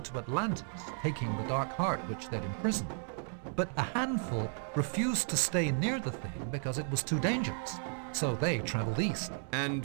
to Atlantis, taking the Dark Heart which they'd imprisoned. But a handful refused to stay near the thing because it was too dangerous. So they traveled east. And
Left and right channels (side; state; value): left; silent; 55 dB below the other